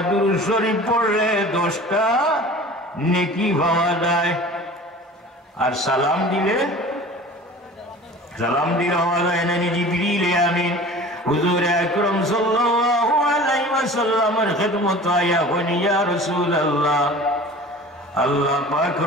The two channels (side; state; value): both; normal; correlation 0.41